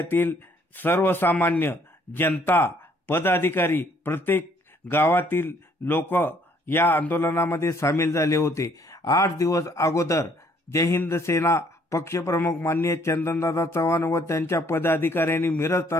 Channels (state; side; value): normal; both; correlation 0.63